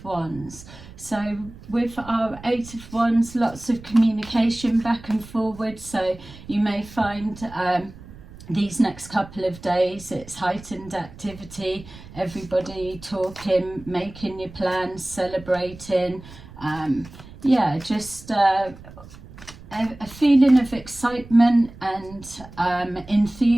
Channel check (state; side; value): noise; right; rumble, 18 dB below the sound